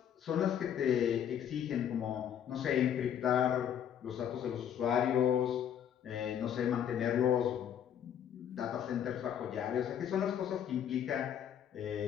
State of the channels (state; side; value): quieter; right; 9.3 dB